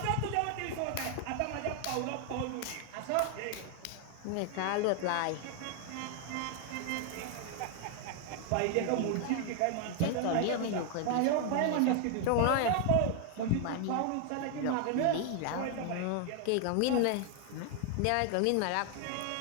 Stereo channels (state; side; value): different; both; correlation 0.00